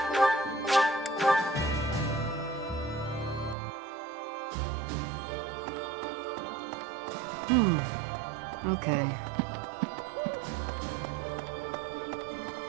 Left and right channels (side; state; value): left; drops out; at 3.6 s